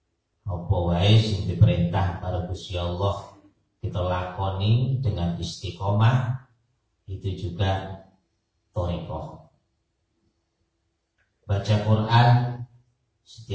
Apa wae sing diperintah karo Gusti Allah kita lakoni dengan istiqomah, itu juga thariqah. Baca Quran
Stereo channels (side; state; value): both; identical; correlation 1.00